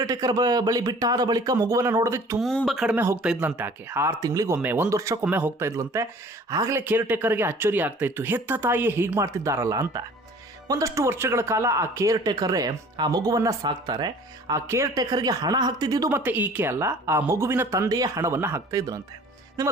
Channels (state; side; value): normal; both; correlation 0.49